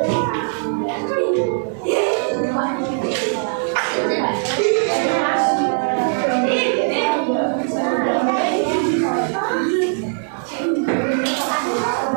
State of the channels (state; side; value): silent; left; 66 dB below the other